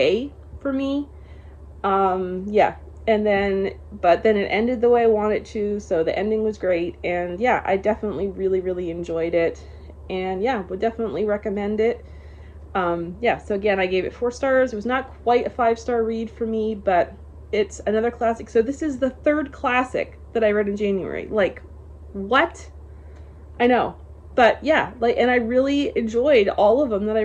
for me. Yeah. And then, but then it ended the way I wanted to, so the ending was great, and yeah, I definitely really, really enjoyed it, and yeah, would definitely recommend it. Yeah, so again, I gave it 4 stars. It was not quite a 5-star read for me, but it's another classic. So this is the 3rd classic that I read in January. Like, what? I know, but yeah, like, and I really enjoyed all of them that I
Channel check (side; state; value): both; identical; correlation 1.00